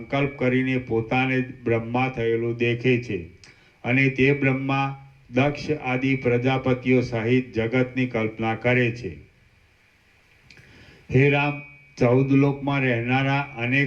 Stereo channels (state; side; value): identical; both; correlation 1.00